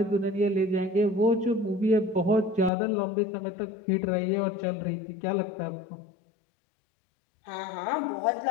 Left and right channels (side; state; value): right; drops out; at 2.7 s